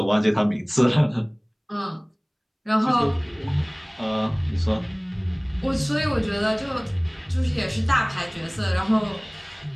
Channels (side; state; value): both; identical; correlation 1.00